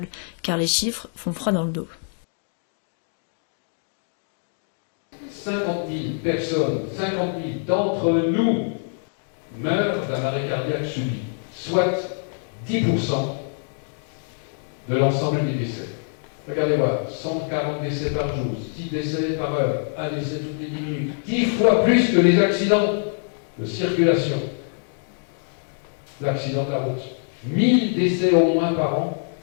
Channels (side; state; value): right; silent; 62 dB below the other